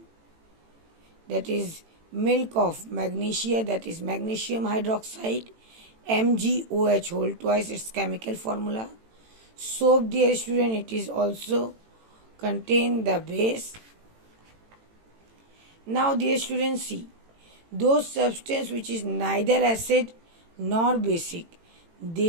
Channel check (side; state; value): left; late; 18 ms